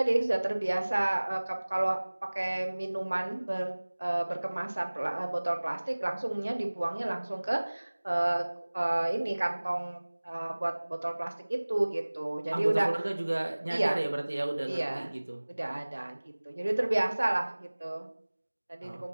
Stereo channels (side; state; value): both; inverted; correlation -1.00